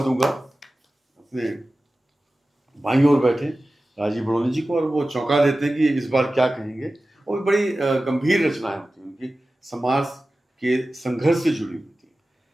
अपने बाईं ओर बैठे राजीव बड़ोनी जी को, और वो चौंका देते हैं कि इस बार क्या कहेंगे। वो भी बड़ी गंभीर रचनाएं होती हैं उनकी, समाज के संघर्ष से जुड़ी हुई थी।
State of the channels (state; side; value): normal; both; correlation 0.95